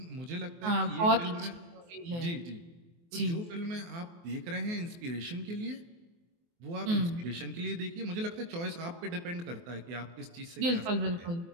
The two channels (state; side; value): late; left; 24 ms